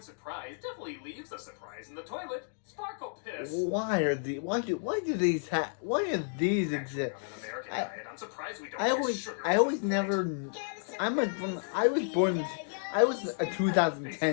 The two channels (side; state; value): right; silent; digital silence